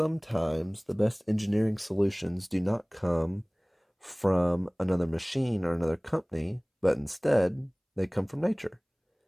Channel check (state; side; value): identical; both; correlation 1.00